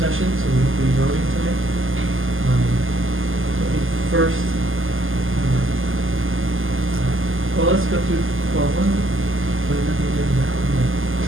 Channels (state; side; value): late; left; 0.59 ms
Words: session, so we won't be voting tonight. Let me first, well, let's go through, well, what is the agenda